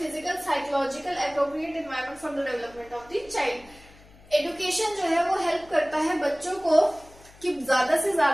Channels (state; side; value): noise; left; hum, 24 dB below the sound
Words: psychological, appropriate environment for the development of the child. Education जो है वो help करता है बच्चों को कि ज्यादा से